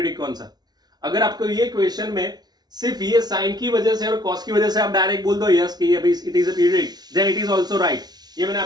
कौन सा. अगर आपको ये क्वेश्चन में सिर्फ ये साइन की वजह से और कॉस की वजह से आप डायरेक्ट बोल दो यस कि ये भाई it is a periodic, then it is also right. ये मैंने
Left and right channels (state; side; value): late; left; 0.19 ms